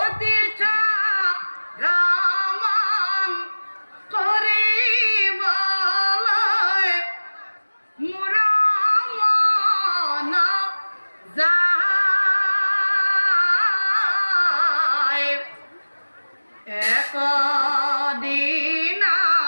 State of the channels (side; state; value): both; inverted; correlation -1.00